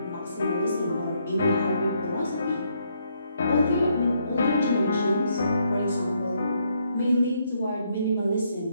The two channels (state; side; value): inverted; both; correlation -0.74